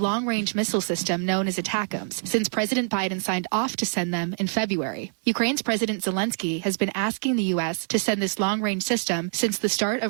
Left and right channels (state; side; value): silent; left; digital silence